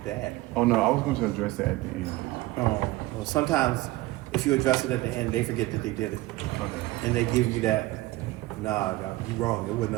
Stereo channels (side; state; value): left; quieter; 18.8 dB